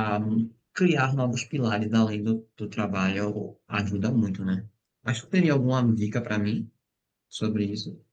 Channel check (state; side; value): identical; both; correlation 1.00